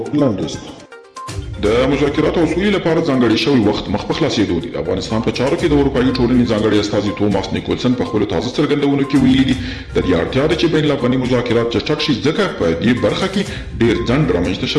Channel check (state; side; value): identical; both; correlation 1.00